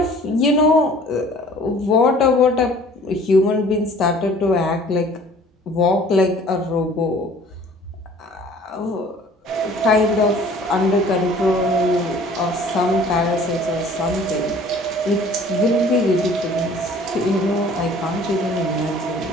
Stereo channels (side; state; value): both; normal; correlation 0.51